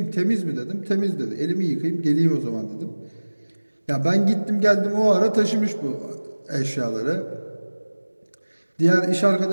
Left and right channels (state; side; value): inverted; both; correlation -1.00